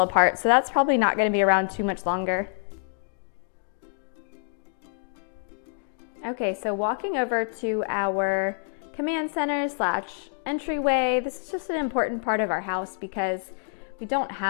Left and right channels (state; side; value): silent; right; digital silence